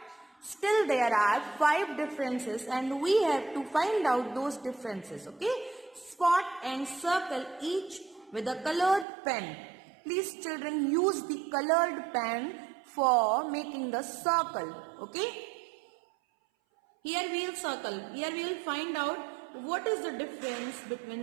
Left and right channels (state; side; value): drops out; left; at 9.1 s